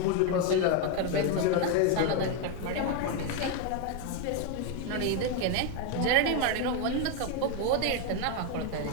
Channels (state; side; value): different; both; correlation 0.01